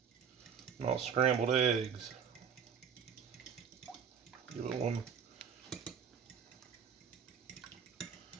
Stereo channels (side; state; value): left; quieter; 7.3 dB